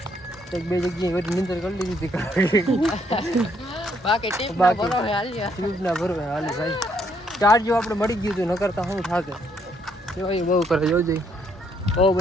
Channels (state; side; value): normal; both; correlation 0.71